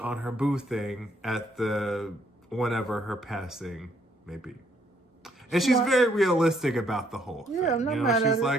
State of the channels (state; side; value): normal; both; correlation 0.68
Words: her boo thing at whenever her passing may be. And she's very realistic about the whole thing. Yeah, I'm not mad at she's it.